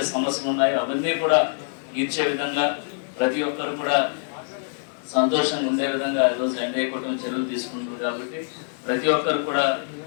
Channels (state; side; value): silent; right; digital silence